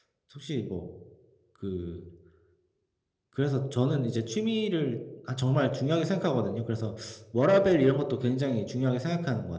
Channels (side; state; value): both; identical; correlation 1.00